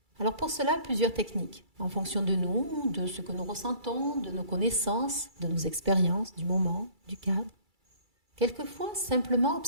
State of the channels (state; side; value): late; left; 2.3 ms